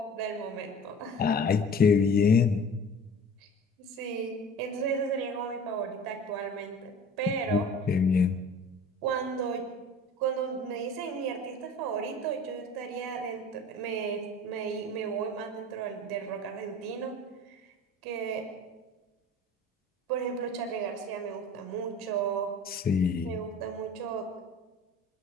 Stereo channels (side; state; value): both; normal; correlation 0.42